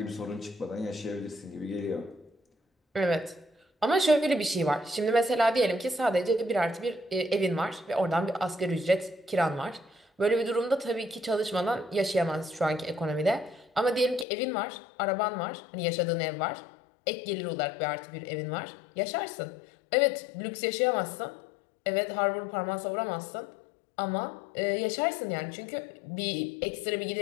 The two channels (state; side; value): drops out; right; at 14.2 s